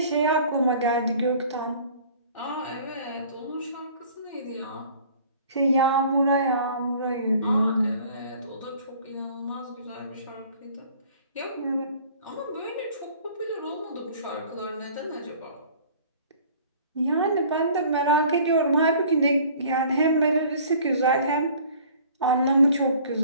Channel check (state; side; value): inverted; both; correlation -0.50